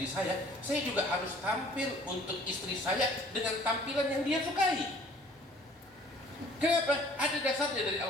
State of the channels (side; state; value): both; normal; correlation 0.54